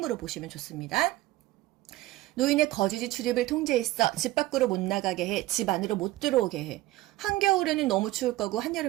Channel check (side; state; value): left; quieter; 17.4 dB